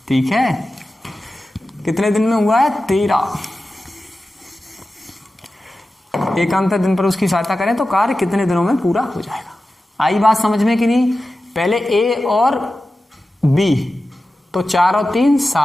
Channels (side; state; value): both; normal; correlation 0.94